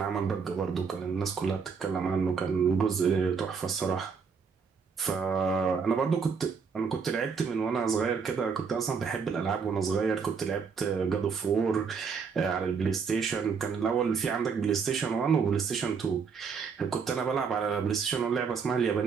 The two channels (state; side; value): quieter; left; 5.8 dB